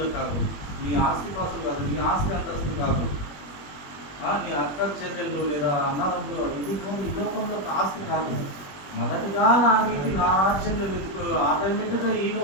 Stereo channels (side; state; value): right; late; 21 ms